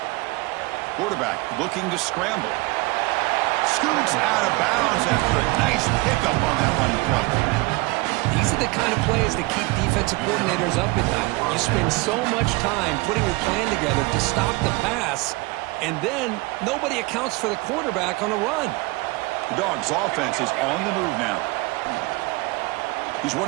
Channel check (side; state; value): left; quieter; 23.9 dB